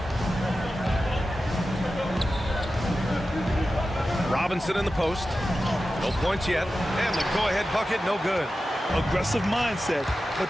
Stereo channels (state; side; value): normal; both; correlation 0.93